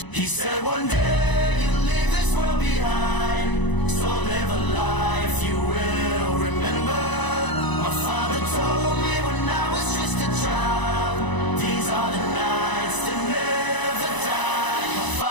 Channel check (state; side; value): late; right; 1.0 ms